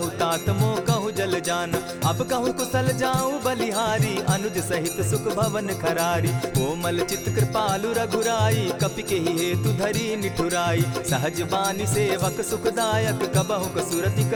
तात मोह कहु जल जाना। अब कहु कुशल जाऊं बलिहारी अनुज सहित सुख भवन खरारी। कोमल चित कृपालु रघुराई कपि के ही हेतु धरी निठुराई। सहज बानी सेवक सुखदायक कबहु कसुरति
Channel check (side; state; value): both; identical; correlation 1.00